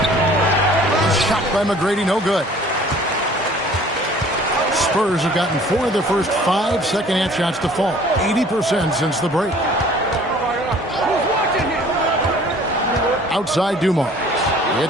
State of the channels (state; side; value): normal; both; correlation 0.51